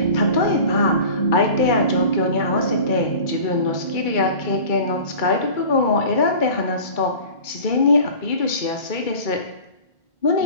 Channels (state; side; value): late; right; 2.3 ms